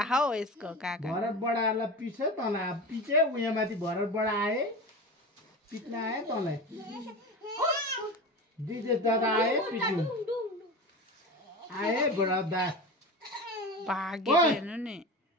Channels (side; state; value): both; normal; correlation 0.28